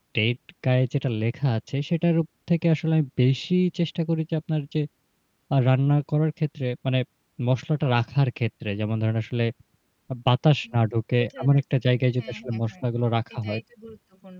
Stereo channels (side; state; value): both; identical; correlation 1.00